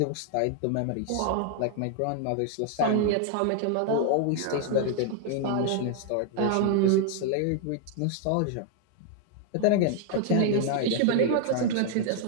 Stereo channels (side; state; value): both; different; correlation 0.00